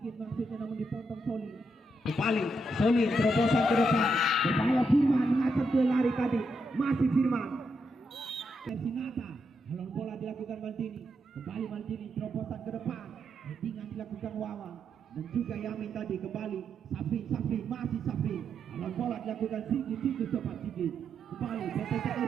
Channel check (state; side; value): normal; both; correlation 0.80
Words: maksudnya namun dipotong Solin. Kembali Solin terobosan ke depan. Berbahaya Firman mengacak ke lari tadi. Masih Firman. Sinata. Alon bola dilakukan Maldini. Kembali Maldini terobosan ke depan. Headingan dilakukan Wawan. Dan juga Yamin tadi kembali. Safri masih Safri. Alon bola dilakukan Sigit cepat Sigit. Kembali